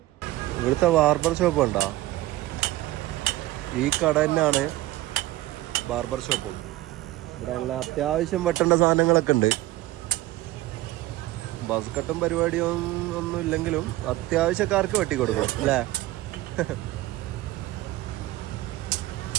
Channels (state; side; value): quieter; left; 17.1 dB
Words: ഇവിടുത്തെ ബാർബർ ഷോപ്പ് ഉണ്ടോ? ഈ കട തന്നെയാണ് ബാർബർ ഷോപ്പും. ഇവിടെ എല്ലാ അത്യാവശ്യം വെട്ടേണ്ട സാധനങ്ങളൊക്കെ ഉണ്ട്. ബസ് കട്ടും പരിപാടിയും ഒന്നും ഇല്ലെങ്കിലും അത്യാവശ്യക്കാർക്ക് വെട്ടിക്കൊടുക്കും അല്ലേ?